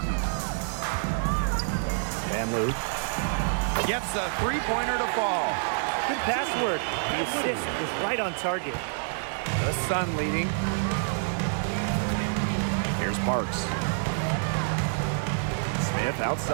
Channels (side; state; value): left; silent; digital silence